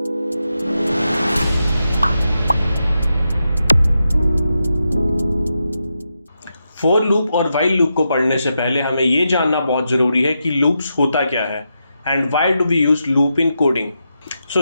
For loop और while loop को पढ़ने से पहले हमें ये जानना बहुत ज़रूरी है कि loops होता क्या है and why do we use loop in coding.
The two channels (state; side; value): inverted; both; correlation -0.86